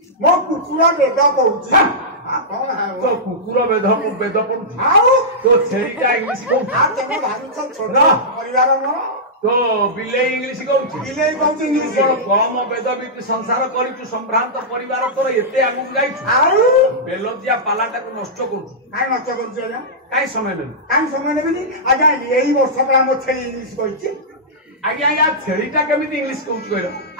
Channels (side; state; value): both; normal; correlation -0.13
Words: मो कुकुरा वेद कहूची कौन है तो कुकुर वेद पढ़ुची आउ तो छेरीटा इंग्लिश कहूची आ तमे भारी छोट ना परिवार मो तो बिले इंग्लिश कहूची बिले कहूची इंग्लिश कम वेद बीती संसार करिचु संभ्रांत परिवार तोर एते आगु जाइछु आउ बेलजिया पालाटा को नष्ट करूछु काय नष्ट करूछु आजा काय समय नेबेनी आजा एही वर्ष पर हम छे इंग्लिश कहूची आज्ञा या छेरीटा केमिति इंग्लिश कहूची कहलो